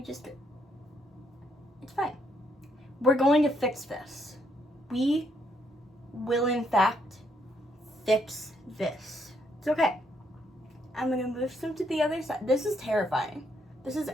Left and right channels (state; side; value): normal; both; correlation 0.73